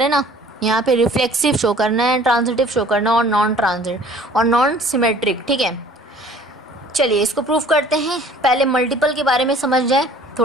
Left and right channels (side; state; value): both; normal; correlation 0.51